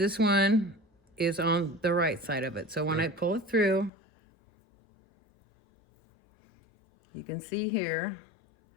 one is on the right side of it. So when I pull it through, you can see here,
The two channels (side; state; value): right; drops out; at 3.9 s